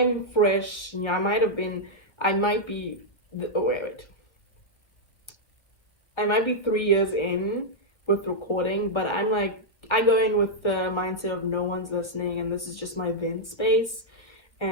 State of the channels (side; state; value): right; late; 1.7 ms